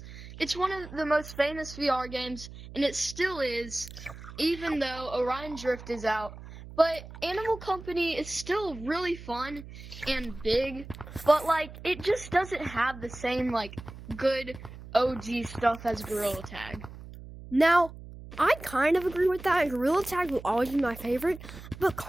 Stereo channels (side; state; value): right; noise; hum, 15 dB below the sound